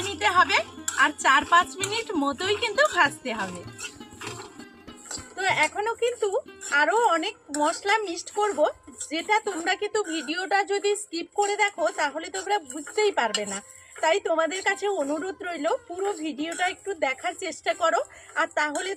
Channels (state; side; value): identical; both; correlation 1.00